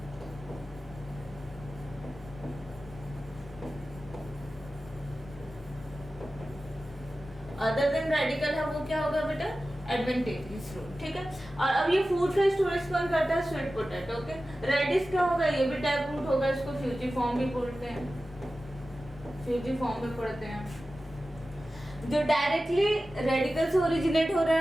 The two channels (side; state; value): both; normal; correlation 0.95